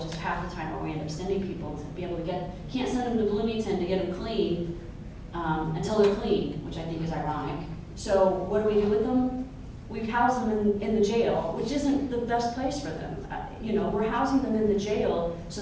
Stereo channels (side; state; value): both; identical; correlation 1.00